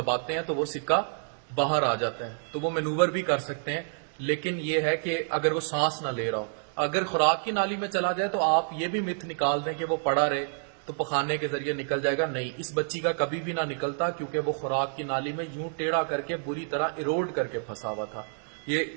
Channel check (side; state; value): left; silent; digital silence